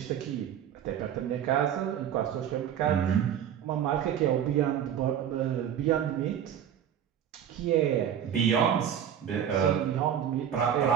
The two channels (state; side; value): quieter; left; 9.4 dB